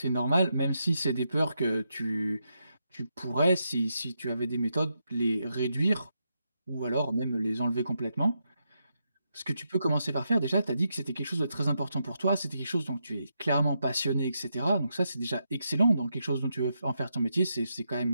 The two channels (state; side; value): inverted; both; correlation -0.83